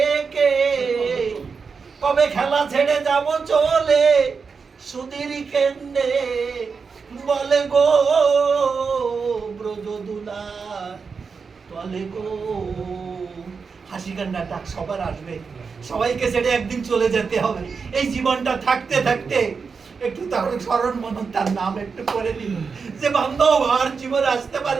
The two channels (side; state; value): left; quieter; 5.3 dB